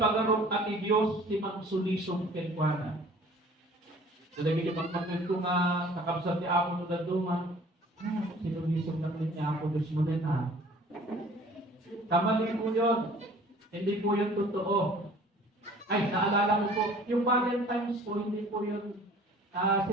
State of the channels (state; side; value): normal; both; correlation 0.50